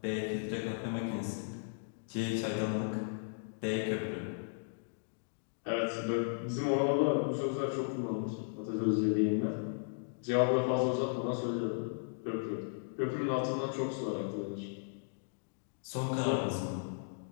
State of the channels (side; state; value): right; silent; digital silence